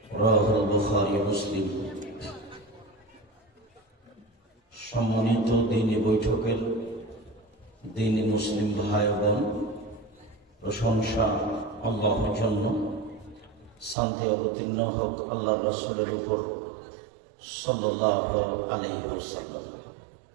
رواه البخاري ومسلم। সম্মানিত দ্বীনি বৈঠকের দ্বীনি মুসলিম ভাই বোন, প্রশংসা আল্লাহর জন্য, শান্তি অবতীর্ণ হোক আল্লাহর রাসূলের উপর সাল্লাল্লাহু আলাইহি ওয়াসাল্লাম।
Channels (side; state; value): left; drops out; at 14.0 s